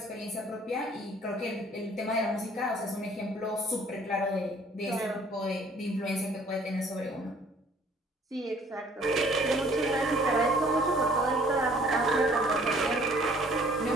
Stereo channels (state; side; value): normal; both; correlation 0.57